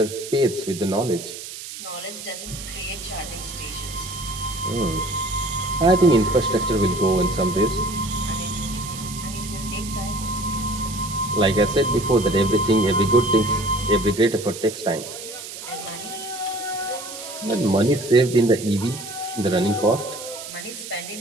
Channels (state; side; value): noise; right; hiss, 11 dB below the sound